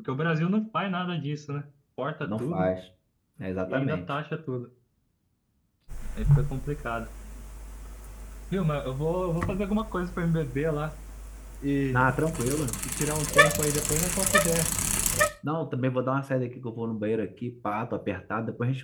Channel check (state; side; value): identical; both; correlation 1.00